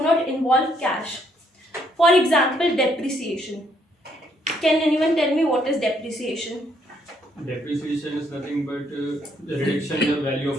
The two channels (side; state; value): both; normal; correlation 0.70